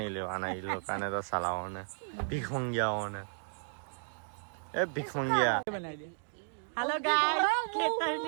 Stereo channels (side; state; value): left; silent; digital silence